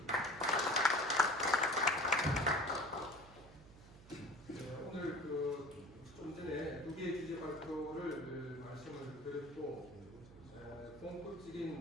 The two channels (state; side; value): noise; right; hum, 20 dB below the sound